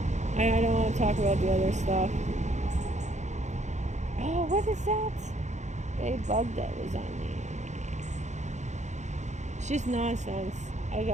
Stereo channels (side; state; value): left; late; 0.34 ms